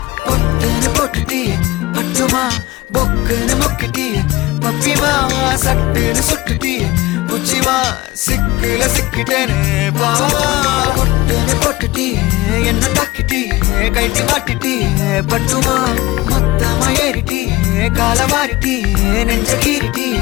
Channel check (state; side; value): quieter; right; 19.2 dB